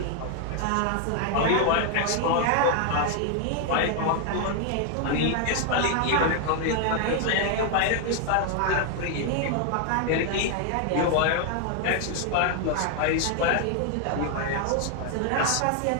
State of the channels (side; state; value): both; different; correlation 0.00